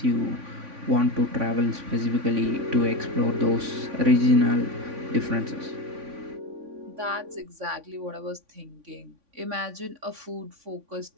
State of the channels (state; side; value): late; left; 3.5 ms